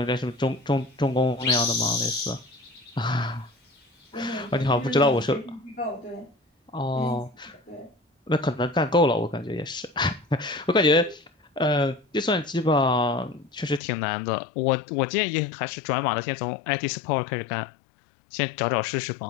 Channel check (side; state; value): right; drops out; at 13.8 s